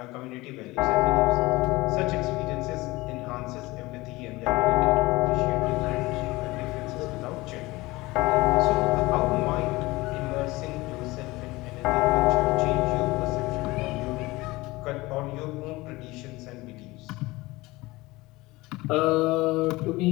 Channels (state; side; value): quieter; right; 20.8 dB